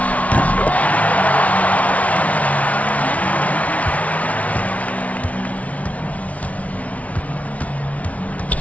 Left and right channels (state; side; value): late; right; 0.068 ms